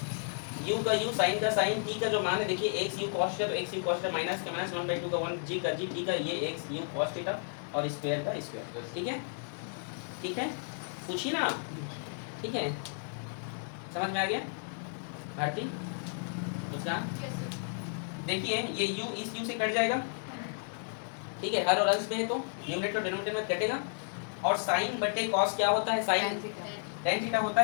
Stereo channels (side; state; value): right; silent; digital silence